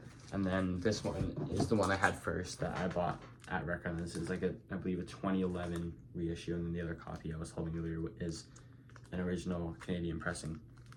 and then this one is the one I had first that I bought at Record. This is like I believe a 2011 reissue, and then the other copy I was holding earlier is an original Canadian pressing.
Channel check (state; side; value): identical; both; correlation 1.00